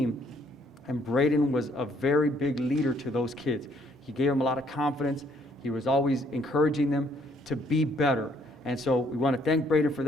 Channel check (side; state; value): both; normal; correlation 0.66